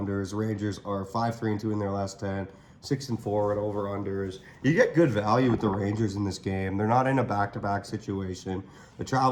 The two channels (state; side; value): identical; both; correlation 1.00